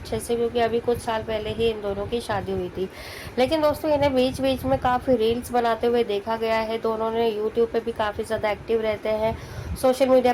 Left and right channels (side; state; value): both; identical; correlation 1.00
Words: से, क्योंकि अभी कुछ साल पहले ही इन दोनों की शादी हुई थी। लेकिन दोस्तों इन्हें बीच बीच में काफ़ी रील्स बनाते हुए देखा गया है। दोनों ने यूट्यूब पे भी काफ़ी ज़्यादा एक्टिव रहते हैं, सोशल मीडिया